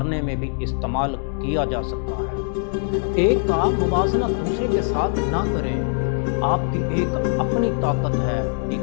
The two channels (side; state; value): right; silent; 58 dB below the other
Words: में भी इस्तेमाल किया जा सकता है। एक का मुवाजना दूसरे के साथ ना करें। आपकी एक अपनी ताकत है,